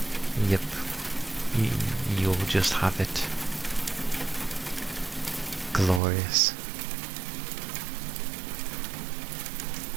Yep. You'll just have it. Glorious.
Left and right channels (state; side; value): drops out; left; at 6.0 s